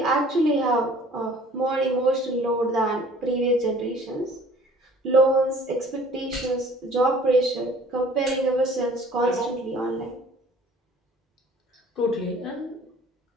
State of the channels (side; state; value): both; normal; correlation 0.51